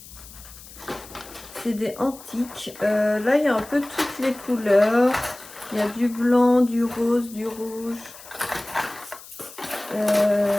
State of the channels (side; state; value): left; noise; hiss, 18 dB below the sound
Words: C'est des antiques. Là, il y a un peu toutes les couleurs. Il y a du blanc, du rose, du rouge.